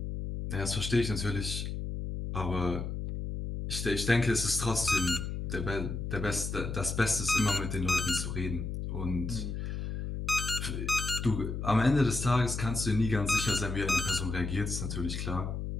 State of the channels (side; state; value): left; noise; hum, 4 dB below the sound